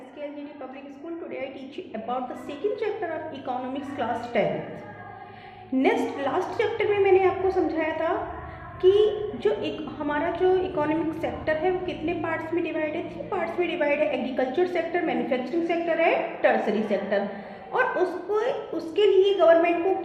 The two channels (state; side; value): identical; both; correlation 1.00